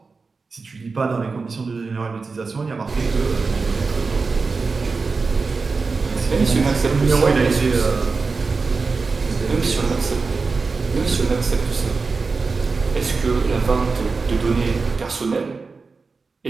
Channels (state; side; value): quieter; left; 4.4 dB